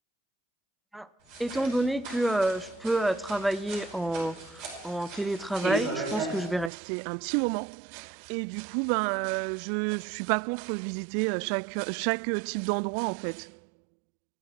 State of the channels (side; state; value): left; drops out; at 6.7 s